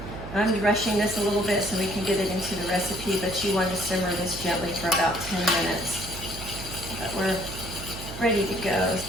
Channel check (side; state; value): right; noise; hum, 12 dB below the sound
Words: I'm rushing this a little bit so we can get it into the recipe, but you want to simmer this gently for about 10 minutes. But we're ready to go.